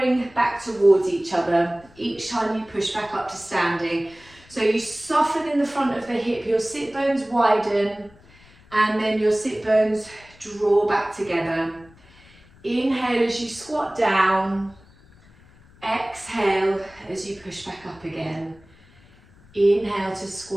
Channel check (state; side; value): noise; left; rumble, 26 dB below the sound